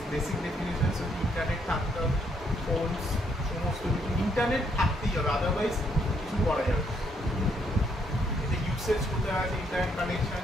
ডেফিনেশনস ইন্টারনেট থাকতে হবে ফোনস সমস্ত কিছু ইন্টারনেট থাকতেই হবে আদারওয়াইজ কিছু করা যাবে এতে ইউসেজ কোথায় আছে ইন্টারনেট কানেকশন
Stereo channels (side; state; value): both; normal; correlation 0.72